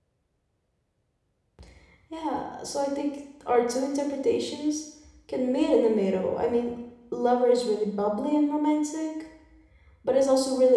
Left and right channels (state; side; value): identical; both; correlation 1.00